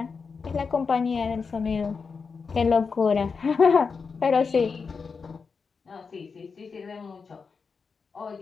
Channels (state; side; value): quieter; right; 5.2 dB